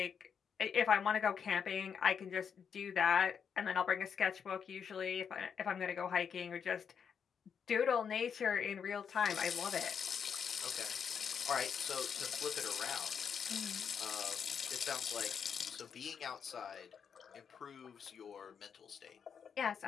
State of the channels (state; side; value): quieter; right; 7.1 dB